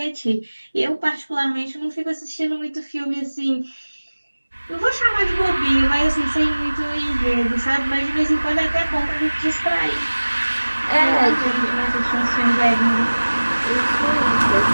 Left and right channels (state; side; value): inverted; both; correlation -1.00